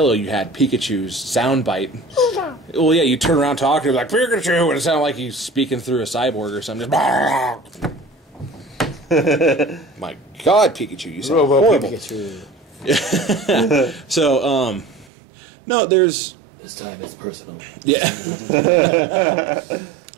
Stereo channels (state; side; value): drops out; left; at 15.1 s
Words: you had Pikachu's sound bite. Well, yeah, you turn around talking, like, Pikachu, and it sounded like he's speaking through a cyborg or something. My God, Pikachu, you sound horrible. Pikachu. So, no, there's... This time it's personal. Yeah.